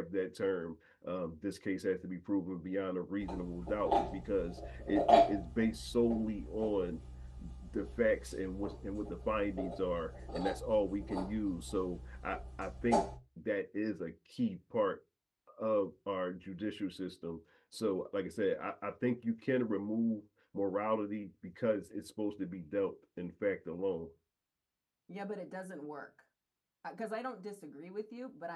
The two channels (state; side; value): identical; both; correlation 1.00